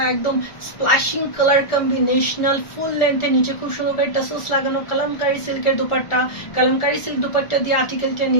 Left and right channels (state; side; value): late; right; 1.4 ms